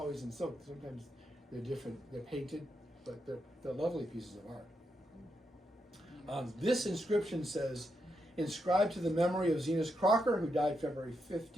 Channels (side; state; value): both; normal; correlation 0.83